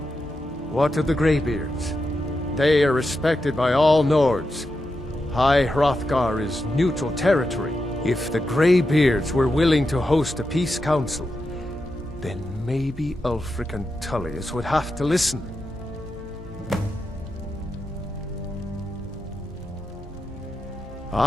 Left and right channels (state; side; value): normal; both; correlation 0.88